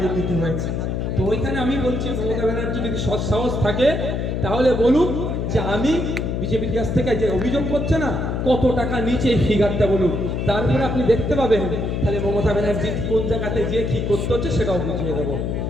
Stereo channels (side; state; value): left; noise; hum, 1 dB below the sound